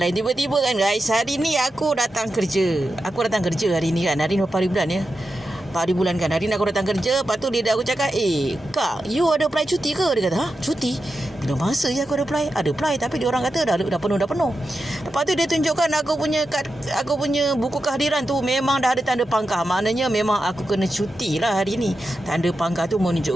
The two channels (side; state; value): both; normal; correlation 0.89